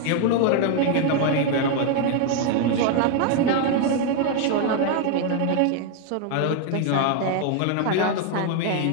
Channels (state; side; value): different; both; correlation 0.01